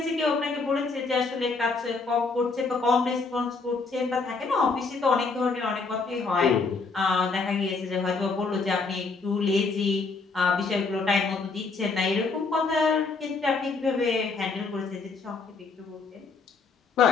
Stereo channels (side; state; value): right; quieter; 4.3 dB